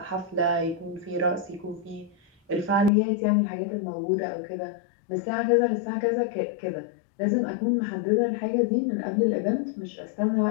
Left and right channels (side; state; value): right; drops out; at 2.9 s